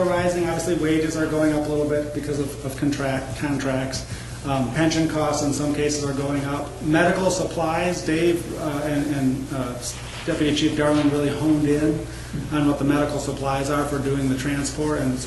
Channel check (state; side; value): identical; both; correlation 1.00